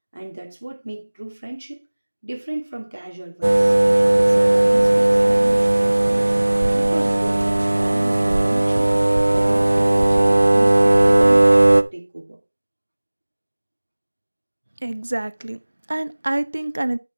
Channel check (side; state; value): both; inverted; correlation -1.00